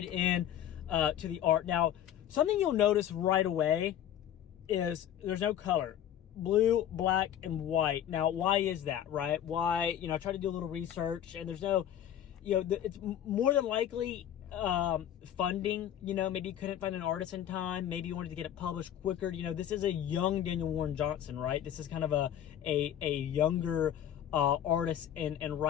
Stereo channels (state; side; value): quieter; right; 10.6 dB